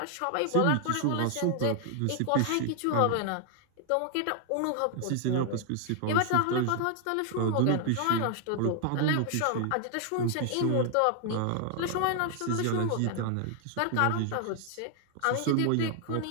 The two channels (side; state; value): both; different; correlation 0.00